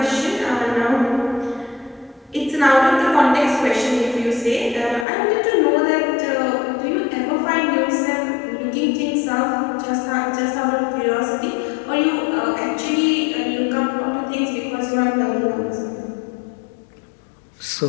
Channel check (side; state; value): right; drops out; at 5.1 s